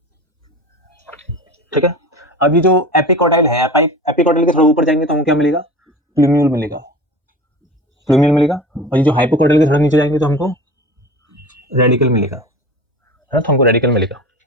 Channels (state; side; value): normal; both; correlation 0.35